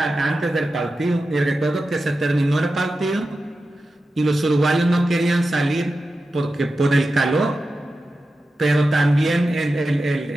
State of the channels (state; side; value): normal; both; correlation 0.92